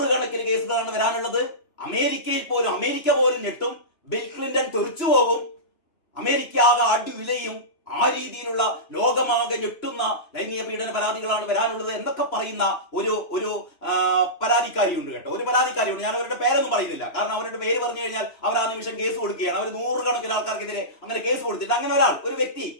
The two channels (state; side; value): late; right; 3.0 ms